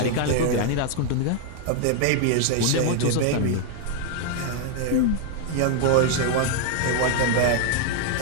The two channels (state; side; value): different; both; correlation 0.00